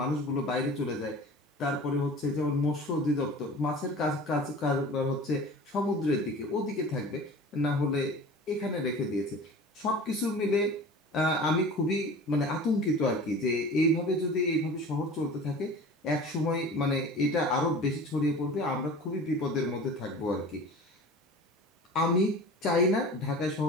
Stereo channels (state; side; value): normal; both; correlation 0.39